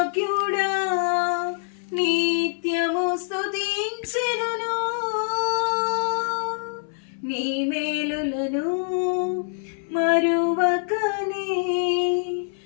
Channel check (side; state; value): right; silent; 62 dB below the other